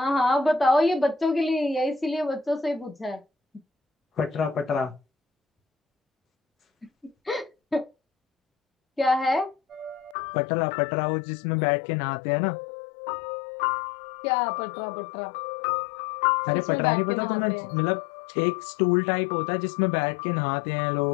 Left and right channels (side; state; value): right; drops out; at 10.2 s